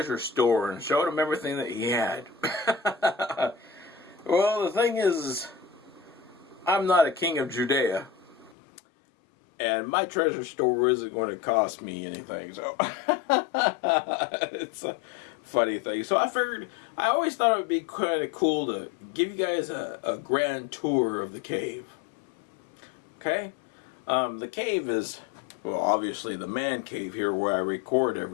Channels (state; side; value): drops out; right; at 8.6 s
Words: store and showed them everything that he had. Well, the thing is, I'm not a king of Judea. And my treasure store isn't going to cost me anything, so it's a funny thing. So I figured, I always thought it would be kind of cool to give you guys a grand tour of the cave. Okay? The cave is, well, obviously the man cave here where I record